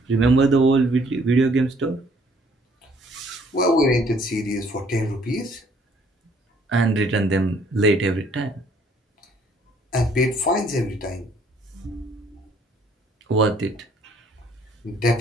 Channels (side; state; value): both; normal; correlation 0.62